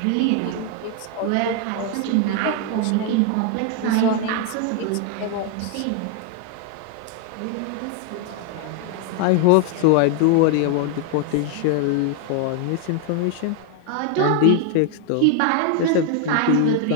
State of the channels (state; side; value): different; both; correlation 0.00